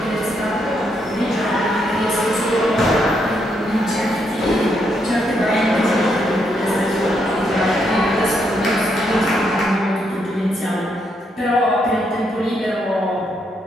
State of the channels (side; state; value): both; normal; correlation 0.77